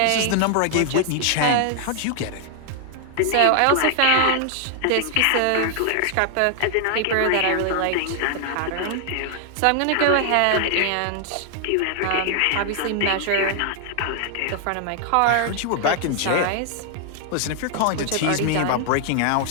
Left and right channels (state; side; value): different; both; correlation 0.00